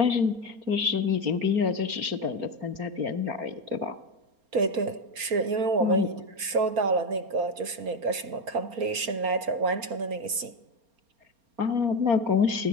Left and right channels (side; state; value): left; late; 4.3 ms